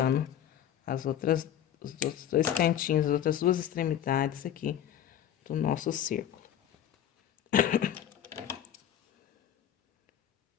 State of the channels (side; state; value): right; quieter; 10.5 dB